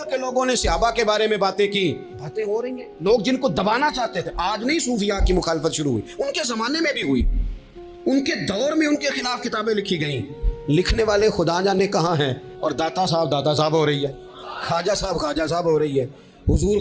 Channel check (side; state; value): both; identical; correlation 1.00